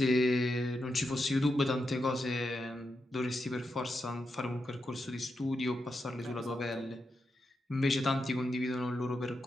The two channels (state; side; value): normal; both; correlation 0.86